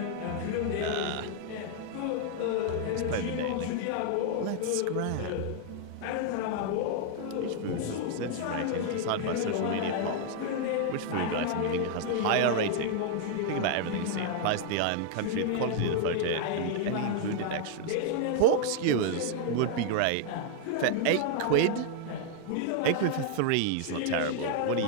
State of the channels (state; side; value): different; both; correlation 0.00